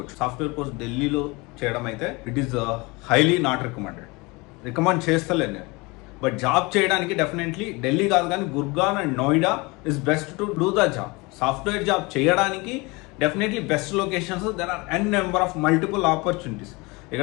సాఫ్ట్వేర్ కోర్స్ ఢిల్లీలో చేయడం అయితే it is highly not recommend చేస్తలేను నేను. బట్ జాబ్ చేయడానికి డెఫినెట్లీ ఢిల్లీ కాదు కానీ Gurgaon and Noida is best to do the job. Software job చేయడానికి definitely best locations, there are n number of multiple opportunities.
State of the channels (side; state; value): right; quieter; 25.4 dB